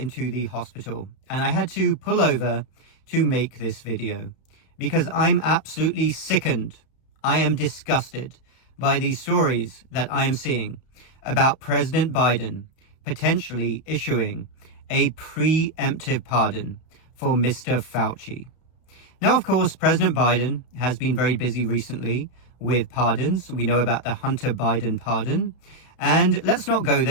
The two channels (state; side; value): late; right; 32 ms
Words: the hospital and I had to pull over to make this video because I'm absolutely sickened. I am disgusted by these stories that I am seeing about President Biden potentially issuing a preemptive pardon for Mr. Fauci. Now, of course, President Biden has been very busy recently with pardons. We know about the Hunter Biden pardon. And let's not go